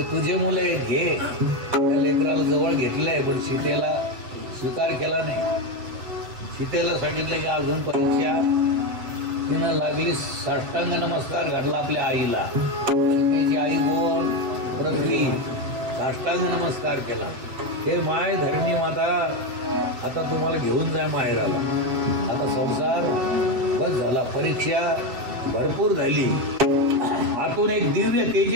तुझे मुलं आहेत, घे. त्या लेकराला जवळ घेतलंय, पण सीतेला स्वीकार केला नाही. सीतेला सांगितलं की अजून परीक्षा. तिनं लागली साष्टांग नमस्कार घातला आपल्या आईला. सीतेची आई कोण? पृथ्वी. साष्टांग नमस्कार केला. हे माय धरणी माता, आता तुम्हाला घेऊन जाय माहेराला. आता संसार बस झाला, परीक्षा भरपूर झाली. आतून एक दिव्य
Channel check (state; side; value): late; left; 7.7 ms